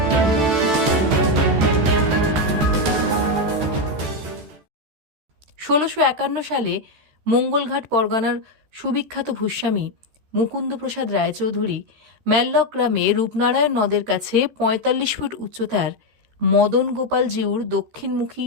১৬৫১ সালে মঙ্গলঘাট পরগনার সুবিখ্যাত ভূস্বামী মুকুন্দপ্রসাদ রায়চৌধুরী ম্যাল্লক গ্রামে রূপনারায়ণ নদের কাছে ৪৫ ফুট উচ্চতার মদন গোপাল জিউর দক্ষিণমুখী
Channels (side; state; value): left; late; 14 ms